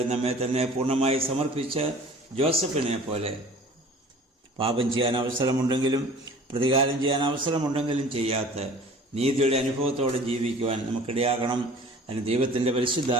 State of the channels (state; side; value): normal; both; correlation 0.46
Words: നമ്മെ തന്നെ പൂർണ്ണമായി സമർപ്പിച്ച് ജോസഫിനെ പോലെ പാപം ചെയ്യാൻ അവസരമുണ്ടെങ്കിലും പ്രതികാരം ചെയ്യാൻ അവസരമുണ്ടെങ്കിലും ചെയ്യാത്ത നീതിയുടെ അനുഭവത്തോടെ ജീവിക്കുവാൻ നമുക്കിടയാകണം. അതിന് ദൈവത്തിൻ്റെ